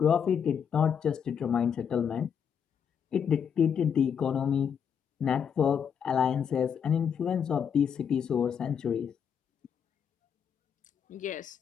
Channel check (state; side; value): quieter; right; 7.5 dB